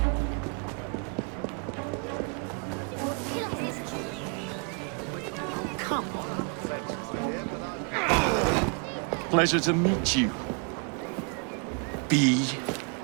Pleasure to meet you. B.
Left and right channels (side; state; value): left; quieter; 36.7 dB